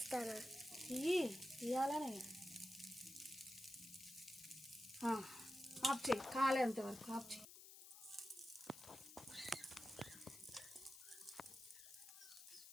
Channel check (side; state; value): left; noise; hiss, 14 dB below the sound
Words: ఇవ్వాలనే ఆఫ్ చేయి కాలేంత వరకు ఆఫ్ చేయి